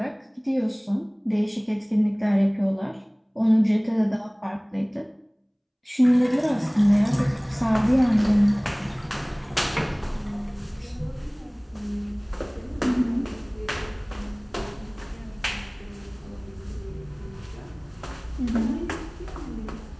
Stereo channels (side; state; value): both; identical; correlation 1.00